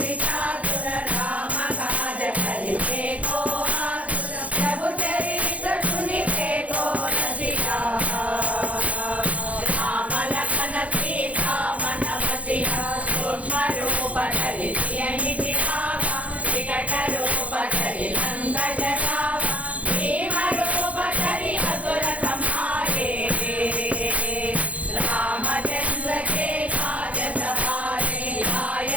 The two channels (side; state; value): left; late; 0.067 ms